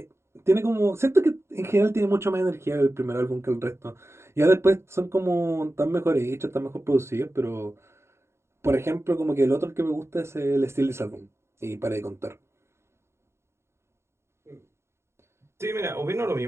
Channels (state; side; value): late; left; 0.13 ms